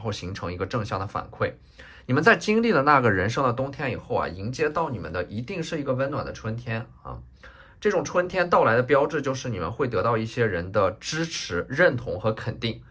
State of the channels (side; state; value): both; identical; correlation 1.00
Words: 形成一个正向的反馈。你们在经历了那个人生的冬天以后啊，迎接到你们的一定是一个温暖的春天啊。这种春天到来的标志就是你们会得到一些人的支持、认同和肯定，